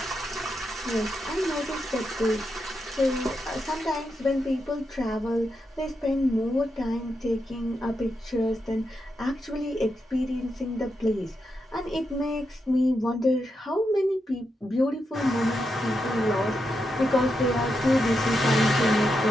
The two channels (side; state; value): both; normal; correlation 0.85